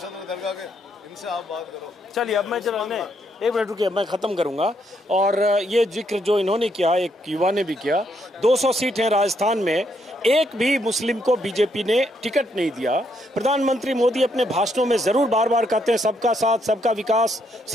दरगाह के, इनसे आप बात करो। चलिए अब मैं चलो एक मिनट रुकिए, मैं ख़त्म करूंगा। और ये जिक्र जो इन्होंने किया, एक युवा ने भी किया, 200 सीट हैं राजस्थान में, एक भी मुस्लिम को बीजेपी ने टिकट नहीं दिया। प्रधानमंत्री मोदी अपने भाषणों में जरूर बार बार कहते हैं सबका साथ, सबका विकास,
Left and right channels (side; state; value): both; normal; correlation 0.75